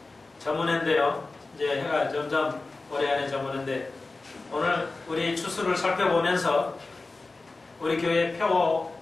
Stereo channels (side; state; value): right; quieter; 3.5 dB